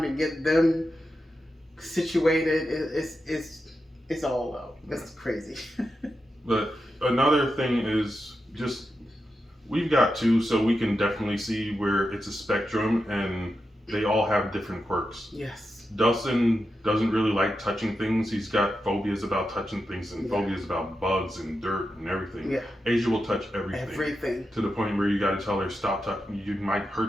to get them situated. It's all out. It's crazy. But another thing is just we've got two, so we can definitely see where it's a spectrum and they all have different quirks. Yes. Dustin doesn't really like touching things. He's got phobias about touching things and Yeah. phobias about bugs and dirt and everything. Yeah. Asia will touch everything. Everything. To the point where you got to tell her, stop touching. You might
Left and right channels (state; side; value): normal; both; correlation 0.88